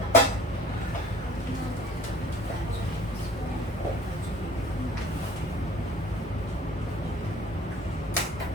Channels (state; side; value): normal; both; correlation 0.48